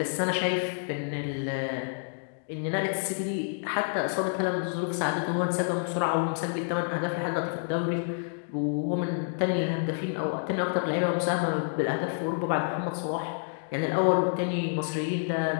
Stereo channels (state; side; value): silent; right; digital silence